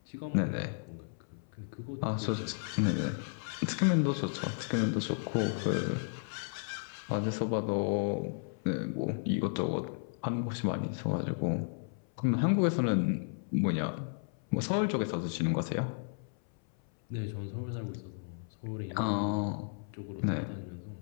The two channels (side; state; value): right; silent; 55 dB below the other